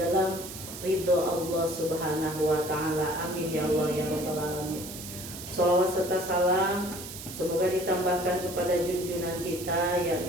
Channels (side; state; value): right; noise; hiss, 11 dB below the sound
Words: dalam ridho Allah Subhanahu wa taala. Amin ya Allah ya rabbal alamin. Shalawat serta salam semoga ditambahkan kepada junjungan kita,